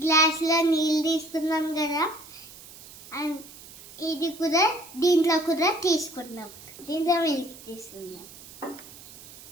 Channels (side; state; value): right; noise; hiss, 18 dB below the sound